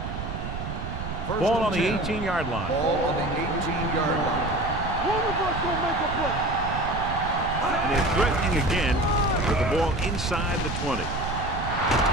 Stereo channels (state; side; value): noise; right; rumble, 6 dB below the sound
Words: Ball on the 18-yard line. Ball on the 18-yard line. One of us gonna make a play. And they're threatening again with the ball inside the 20.